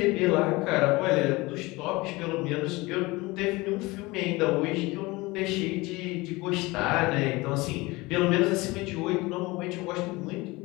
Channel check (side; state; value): right; quieter; 22.4 dB